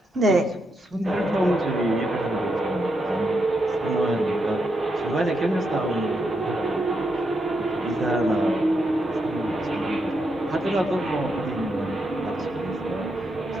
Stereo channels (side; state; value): both; normal; correlation 0.82